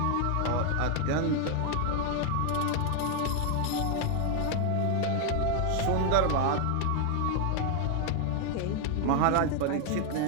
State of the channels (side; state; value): both; different; correlation 0.00